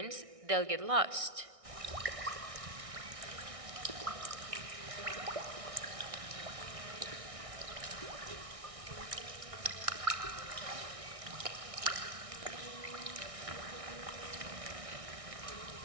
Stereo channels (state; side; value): late; left; 1.6 ms